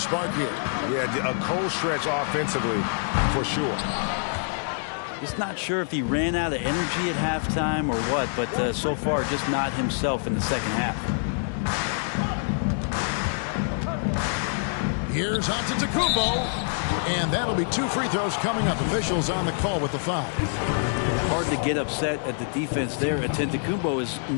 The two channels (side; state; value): right; silent; digital silence